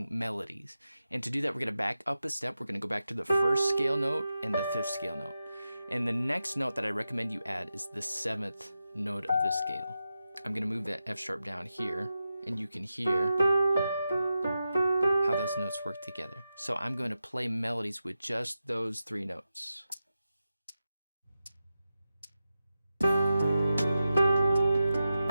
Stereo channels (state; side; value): inverted; both; correlation -0.91